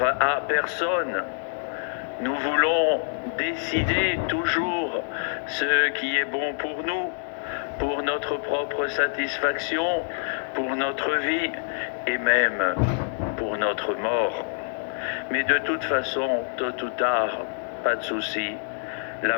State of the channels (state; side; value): silent; right; 61 dB below the other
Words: à personne, nous voulons décider toujours ce qui est bon pour nous, pour notre propre satisfaction, pour notre vie et même pour notre mort. Mais de toute façon, tôt ou tard, pas de souci, la